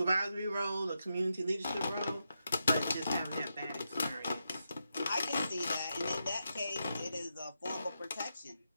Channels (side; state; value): both; inverted; correlation -0.86